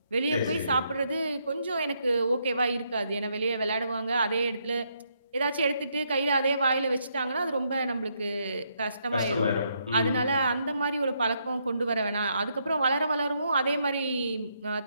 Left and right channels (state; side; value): inverted; both; correlation -0.76